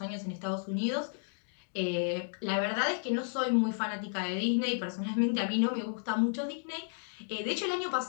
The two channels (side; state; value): right; silent; digital silence